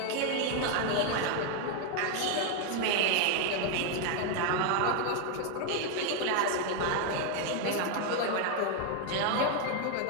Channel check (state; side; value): different; both; correlation 0.01